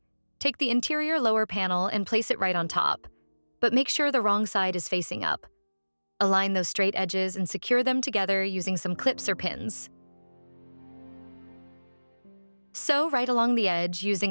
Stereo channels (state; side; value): inverted; both; correlation -1.00